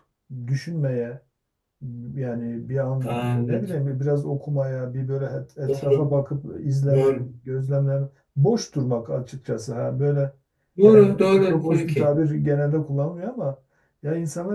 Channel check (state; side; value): identical; both; correlation 1.00